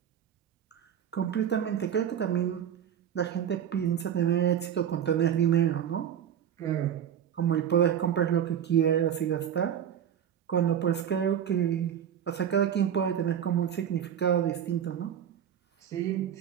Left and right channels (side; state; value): left; quieter; 9.3 dB